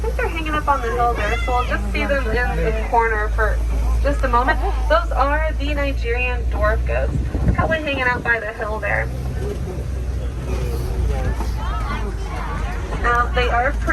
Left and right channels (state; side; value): identical; both; correlation 1.00